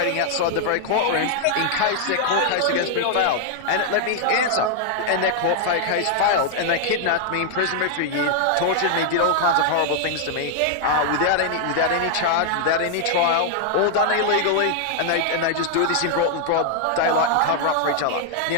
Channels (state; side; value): different; both; correlation 0.00